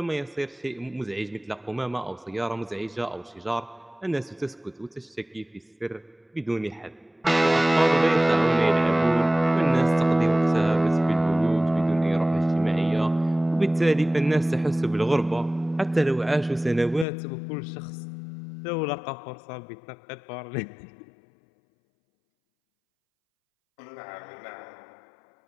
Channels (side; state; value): right; drops out; at 17.1 s